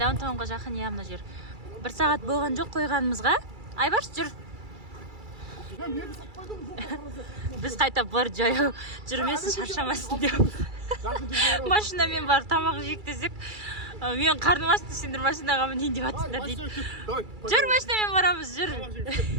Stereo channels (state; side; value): late; left; 2.3 ms